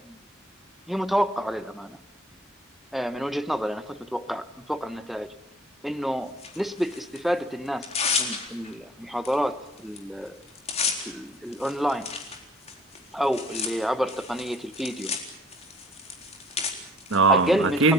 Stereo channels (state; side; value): normal; both; correlation 0.53